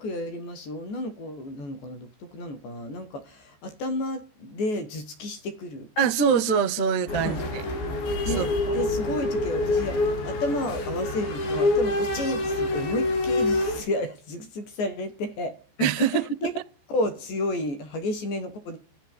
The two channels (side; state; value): right; late; 14 ms